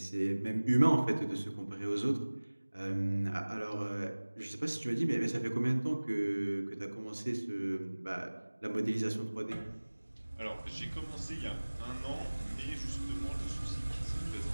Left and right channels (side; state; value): both; inverted; correlation -1.00